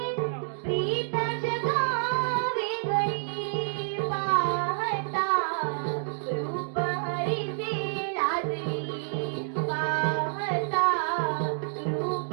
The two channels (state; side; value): silent; left; digital silence